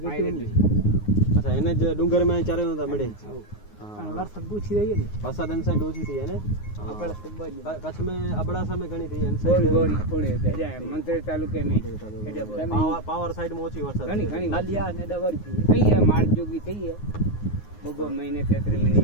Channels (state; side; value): late; right; 9.6 ms